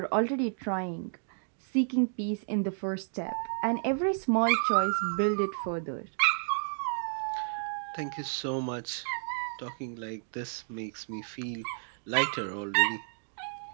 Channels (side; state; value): left; silent; digital silence